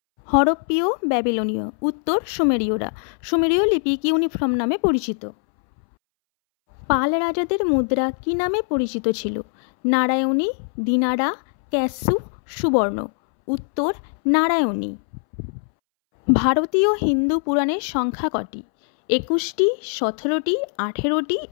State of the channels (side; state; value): right; silent; 64 dB below the other